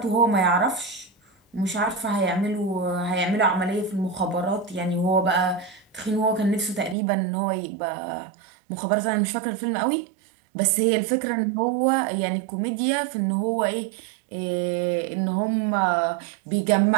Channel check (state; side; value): drops out; left; at 7.0 s